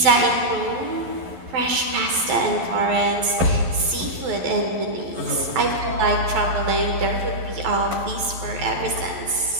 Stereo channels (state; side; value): late; left; 11 ms